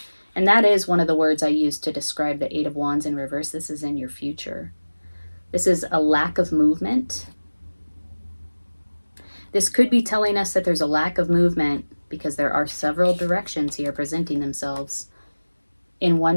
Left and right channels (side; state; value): both; inverted; correlation -1.00